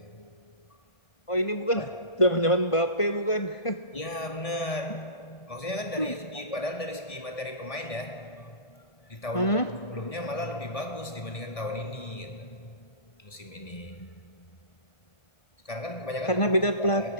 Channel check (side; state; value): right; late; 1.7 ms